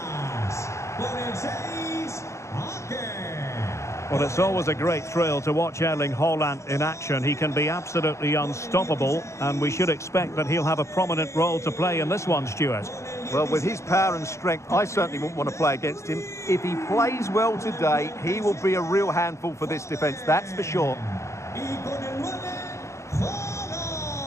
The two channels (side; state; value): right; late; 0.14 ms